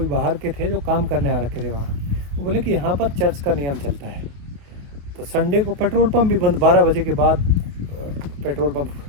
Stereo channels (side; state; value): left; late; 28 ms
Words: बाहर के थे जो काम करने आ रखे थे वहाँ, वो बोले कि यहाँ पर चर्च का नियम चलता है, तो संडे को पेट्रोल पंप भी बंद, 12 बजे के बाद पेट्रोल पंप